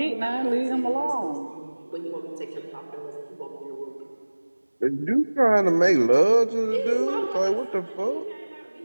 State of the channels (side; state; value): both; inverted; correlation -1.00